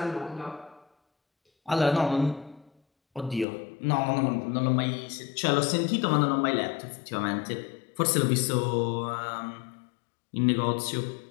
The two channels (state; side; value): drops out; right; at 3.5 s